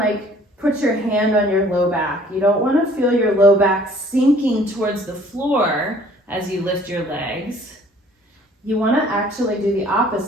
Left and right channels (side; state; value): both; normal; correlation 0.55